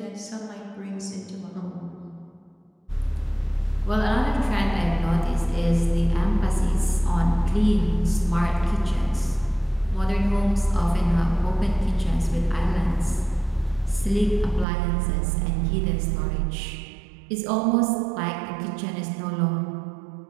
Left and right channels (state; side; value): drops out; left; at 14.7 s